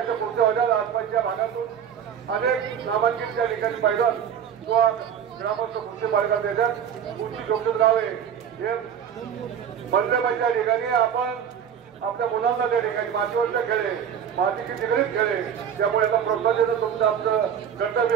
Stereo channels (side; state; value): left; quieter; 8.4 dB